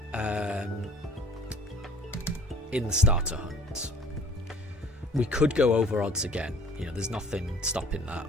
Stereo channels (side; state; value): both; normal; correlation 0.51